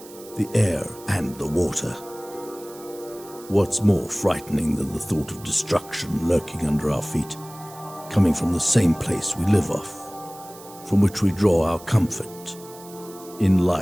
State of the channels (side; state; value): right; noise; hiss, 19 dB below the sound